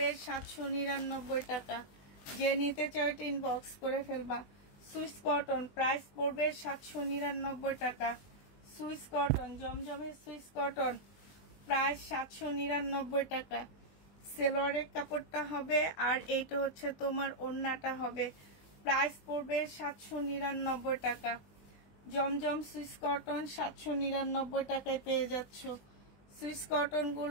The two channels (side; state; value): right; late; 20 ms